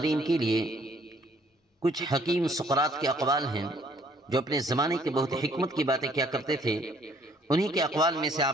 کے لیے کچھ حکیم سقراط کے اقوال ہیں جو اپنے زمانے کے بہت حکمت کی باتیں کیا کرتے تھے۔ انہی کے اقوال میں سے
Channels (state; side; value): normal; both; correlation 0.62